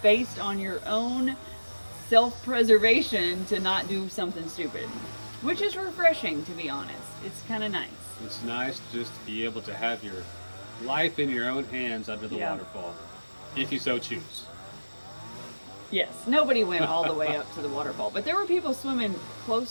based on your own self-preservation to not do something stupid, which is refreshing, to be honest. It's kind of nice. It's nice just to be able to have your life in your own hands under the Yeah. waterfall, if you so choose. Yes, nobody went all the way up to the waterfall, but there were people swimming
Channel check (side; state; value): both; inverted; correlation -1.00